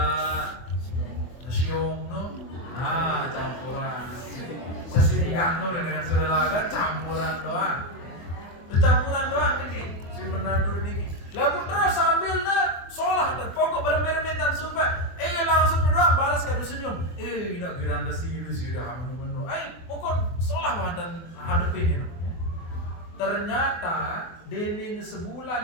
siung no, campuran. Sesingkat no dengan serelaga campuran doang. Campuran doang ini si menantu niki. Lalu terus sambil sholat dan pokok berembe-rembe dan sumpah. Langsung doang balas kado senyum. Nak giranda sih sudah menu. Pokok sholat dan hadapin ini. Ternyata Denin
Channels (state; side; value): late; right; 24 ms